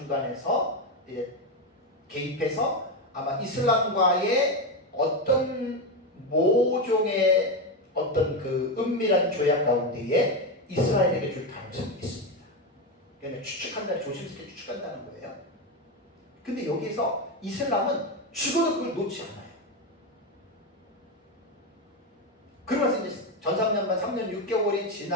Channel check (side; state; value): both; normal; correlation 0.11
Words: 이제 개입해서 아마 이슬람과의 어떤 모종의 어떤 그 은밀한 조약 가운데에 이스라엘에게 줄 가능성이 있습니다. 그러니까 추측한다, 조심스럽게 추측한다는 거예요. 근데 여기에서 이슬람은 죽어도 그걸 놓지 않아요. 그러면서 이제 전삼년반 3년 6개월이